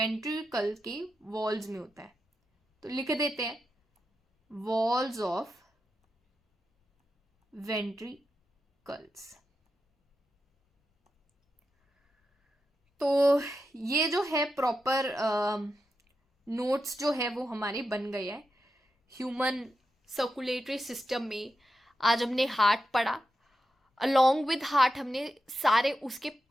के वॉल्स में होता है। तो लिख देते हैं वॉल्स ऑफ वेंट्रिकल्स। तो ये जो है प्रॉपर नोट्स जो है वो हमारे बन गए हैं ह्यूमन सर्कुलेटरी सिस्टम में। आज हमने हार्ट पढ़ा, अलोंग विद हार्ट हमने सारे उसके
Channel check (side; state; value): both; normal; correlation 0.88